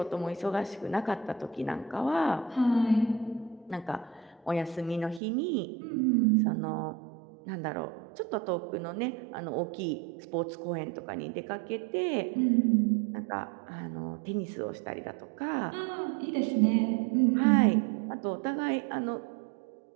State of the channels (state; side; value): drops out; left; at 5.2 s